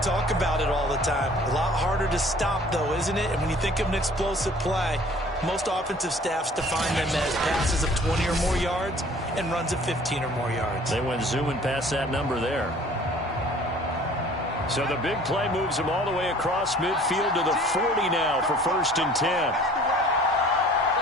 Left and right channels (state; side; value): normal; both; correlation 0.51